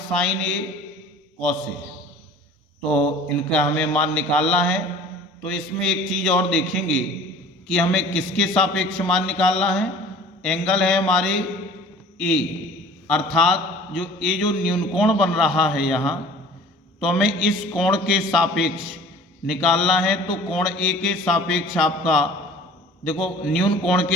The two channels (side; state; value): both; normal; correlation 0.46